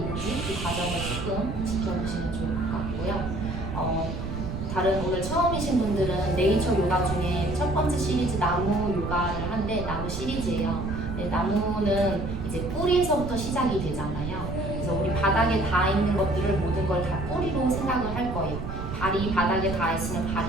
그 과정을 조금 지켜보시면 좋을 것 같고요. 다른 오늘 처음이신 분들은 네이처 요가 중에 첫 번째 시리즈 나무 요가를 한데 나무 시리즈예요. 네, 나무는 이제 뿌리에서부터 시작이 되잖아요. 그래서 우리 바닥에 닿아 있는 것들을 모든 걸 다 뿌리로 생각을 할 거예요. 발이 바닥에 닿아 있으면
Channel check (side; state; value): right; noise; rumble, 6 dB below the sound